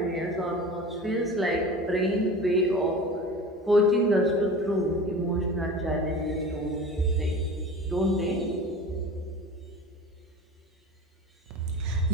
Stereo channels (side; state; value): both; normal; correlation 0.36